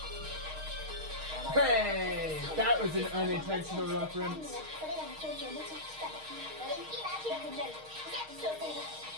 Hey, that was an unintentional reference.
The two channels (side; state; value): left; late; 6.4 ms